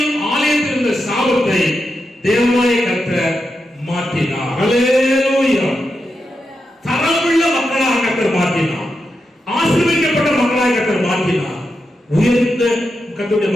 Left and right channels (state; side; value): normal; both; correlation 0.87